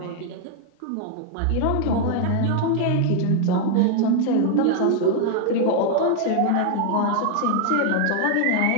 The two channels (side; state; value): both; different; correlation 0.00